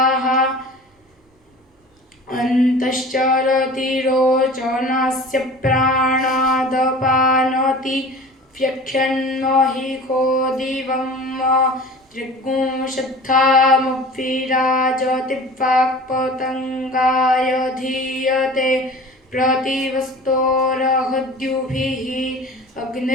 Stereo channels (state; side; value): normal; both; correlation 0.40